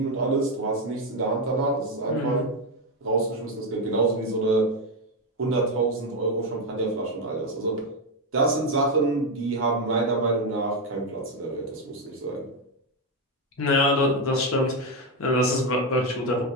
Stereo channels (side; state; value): both; normal; correlation 0.07